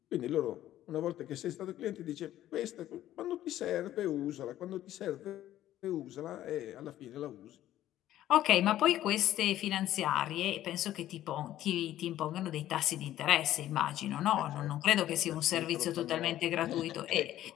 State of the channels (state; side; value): quieter; right; 13.2 dB